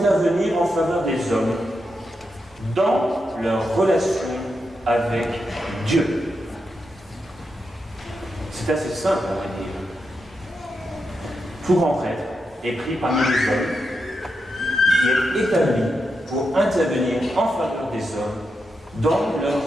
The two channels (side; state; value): both; normal; correlation 0.86